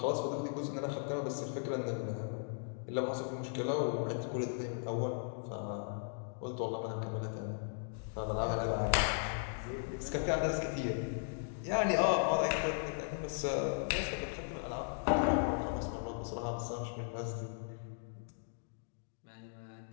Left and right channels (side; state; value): right; silent; digital silence